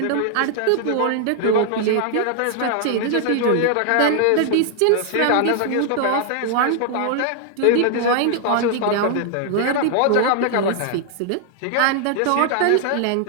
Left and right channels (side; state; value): both; different; correlation 0.00